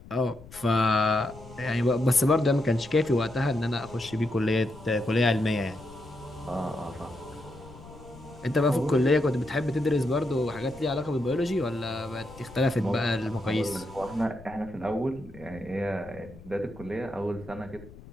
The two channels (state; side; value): noise; left; rumble, 19 dB below the sound